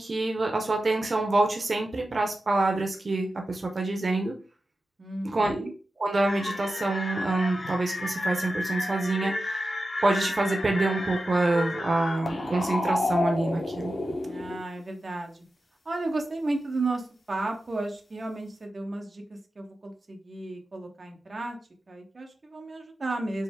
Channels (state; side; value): normal; both; correlation 0.92